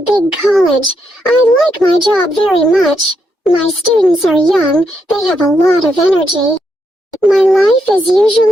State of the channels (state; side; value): normal; both; correlation 0.79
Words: big college. I like my job very much. My students are young. They have a lot of energy. My life is